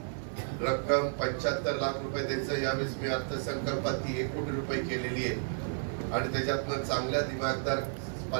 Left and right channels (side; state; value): left; silent; digital silence